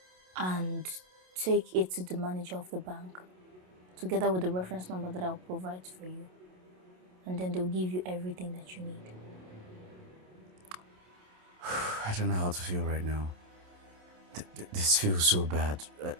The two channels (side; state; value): left; late; 27 ms